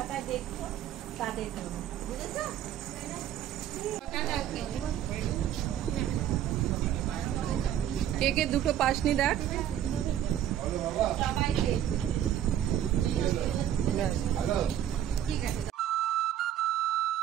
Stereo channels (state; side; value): quieter; left; 10.9 dB